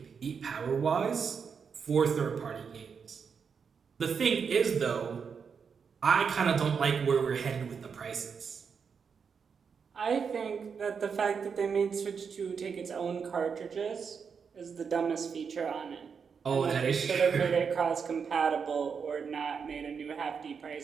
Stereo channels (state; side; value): quieter; left; 6.2 dB